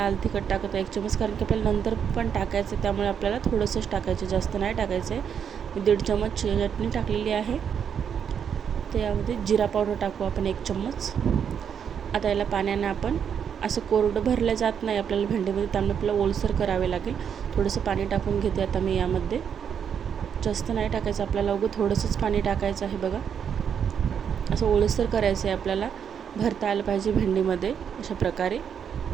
तिखट टाकत आहे 1 चमच, कारण की आपल्याला नंतर पण टाकायचं आहे, त्यामुळे आपल्याला थोडंसंच टाकायचं, जास्त नाही टाकायचं आहे। मी 1.5 चमच चटणी टाकलेली आहे। त्यामध्ये जिरा पावडर टाकू आपण 1 चम्मच। आता याला पाण्याने आपण असं कोरडं भरलं जात नाही आपल्याला भेंडीमध्ये, त्यामुळे आपल्याला ओलसर करावे लागेल। थोडंसं पाणी टाकून घेते आता मी यामध्ये, जास्त नाही टाकायचं आपल्याला, उगं थोडंसंच पाणी टाकायचं आहे बघा। असं ओलसर करायचं आहे आपल्याला, भरता आलं पाहिजे भेंडीमध्ये अशा प्रकारे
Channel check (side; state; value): left; quieter; 7.8 dB